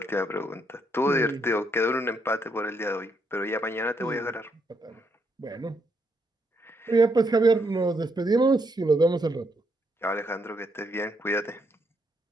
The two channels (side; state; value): both; normal; correlation 0.76